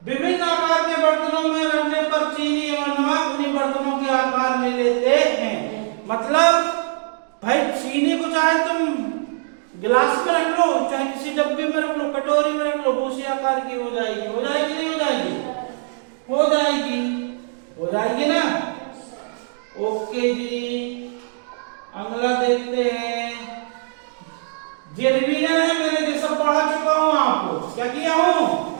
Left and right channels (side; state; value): left; silent; digital silence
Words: विभिन्न आकार के बर्तनों में रखने पर चीनी और नमक उन्हीं बर्तनों के आकार ले लेते हैं। मतलब भाई, चीनी को चाहे तुम गिलास में रख लो, चाहे किसी डब्बे में रख लो, कटोरी में रख लो, उसी आकार की हो जाएगी। हो जाएगी नहीं हो जाएगी? हो जाएगी। हो जाएगी ना? ओके जी, अगला देखते हैं। ये रिवीजन है, मैंने ये सब पढ़ा चुका हूं आपको। क्या किया हूं?